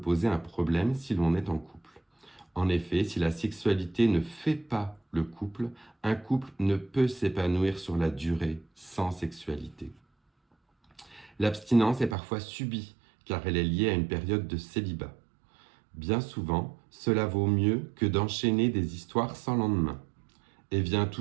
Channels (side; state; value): left; drops out; at 12.2 s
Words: un problème si l'on est en couple. En effet, si la sexualité ne fait pas le couple, un couple ne peut s'épanouir sur la durée sans sexualité. L'abstinence est parfois subie, car elle est liée à une période de célibat. Bien souvent, cela vaut mieux que d'enchaîner des histoires sans lendemain. Et vient